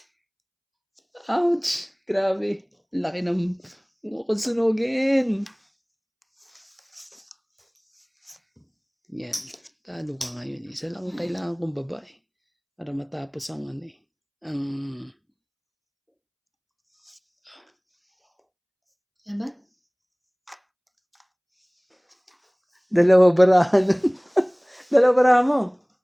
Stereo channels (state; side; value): identical; both; correlation 1.00